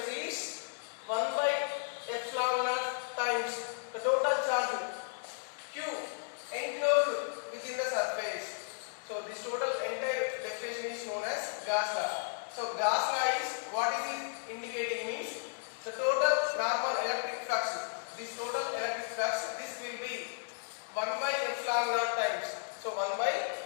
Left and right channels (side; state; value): right; silent; digital silence